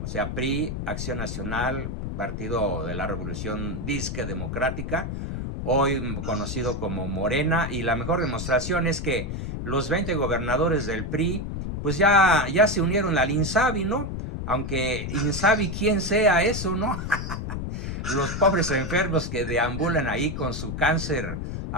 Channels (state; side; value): noise; left; rumble, 4 dB below the sound